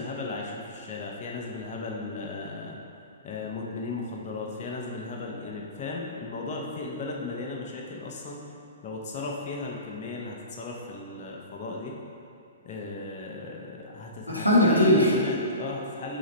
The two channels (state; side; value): inverted; both; correlation -0.34